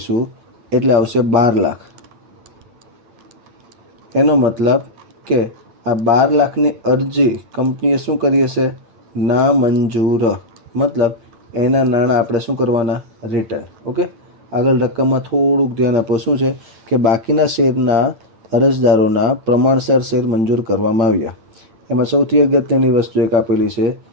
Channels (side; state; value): left; late; 8.9 ms